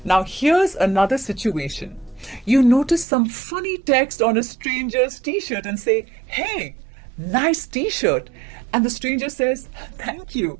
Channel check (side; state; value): left; drops out; at 3.1 s